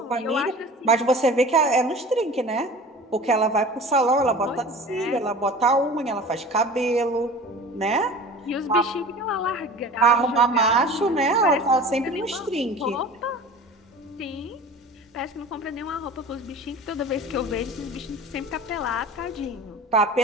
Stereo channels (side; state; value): both; normal; correlation 0.39